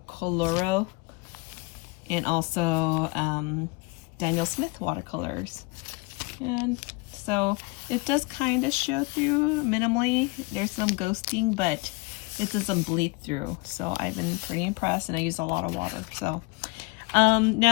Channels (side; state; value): right; quieter; 25.2 dB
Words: Coloro, and also Daniel Smith watercolors. And so it does kind of show through minimally. There's some ghosting, but it doesn't bleed through. So I've been pretty impressed, and I use a lot of water. So